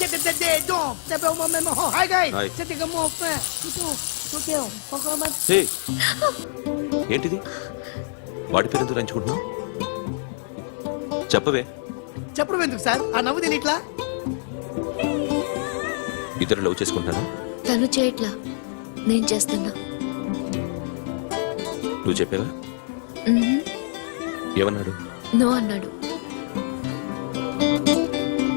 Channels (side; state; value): right; silent; 62 dB below the other